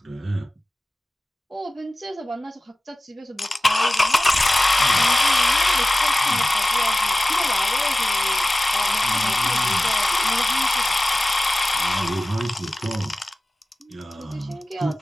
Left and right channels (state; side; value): normal; both; correlation 0.96